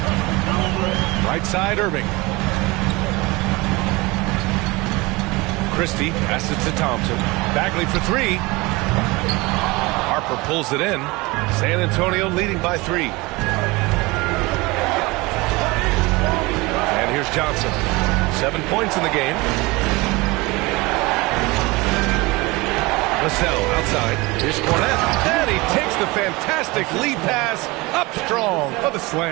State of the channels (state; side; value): quieter; left; 23.3 dB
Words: Right side, Irving. Christie passes to Thompson. Bagley for 3. Harper pulls it in. San Antonio leading by 3. And here's Johnson. 7 points in the game. Vassell outside. Here's Cornette. And he takes the fantastic lead pass up strong for the